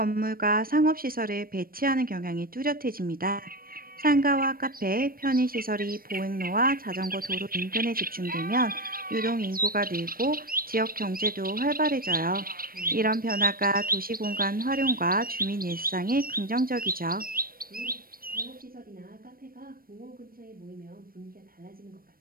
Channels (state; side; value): late; left; 0.42 ms